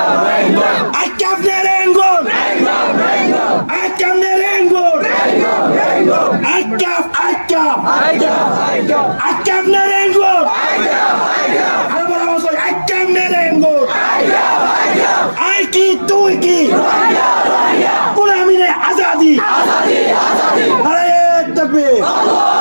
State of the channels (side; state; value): both; inverted; correlation -1.00